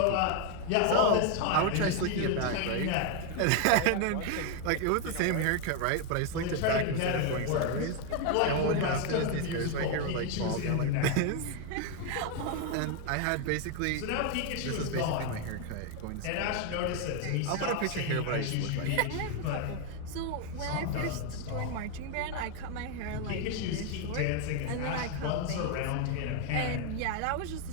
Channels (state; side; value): different; both; correlation 0.01